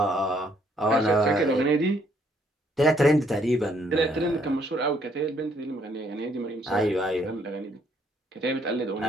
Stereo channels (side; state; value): both; normal; correlation 0.68